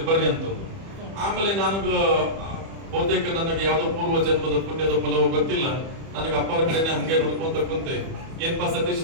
ಬರ್ರಿ ಅಂತಂದು. ಆಮೇಲೆ ನನಗ ಬಹುತೇಕ ನನಗೆ ಯಾವ್ದೋ ಪೂರ್ವ ಜನ್ಮದ ಪುಣ್ಯದ ಫಲವೋ ಗೊತ್ತಿಲ್ಲ, ನನಗೆ ಅಪ್ಪ ಅವ್ರ ಕಡೆನೆ ಹಂಗೆ ನೋಡ್ಕೊಂತ ಕುಂತೆ, ಏನ್ಪಾ ಸತೀಶ್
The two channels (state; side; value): late; left; 31 ms